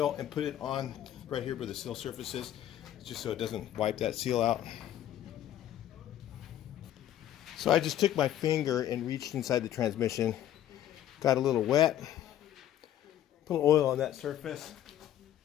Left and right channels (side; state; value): right; quieter; 11.8 dB